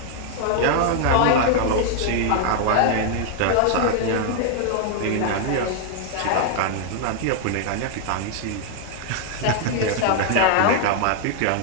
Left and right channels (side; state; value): both; different; correlation 0.00